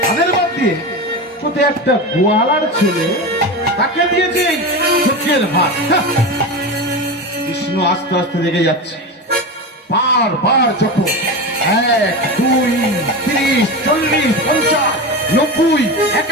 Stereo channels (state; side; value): normal; both; correlation 0.23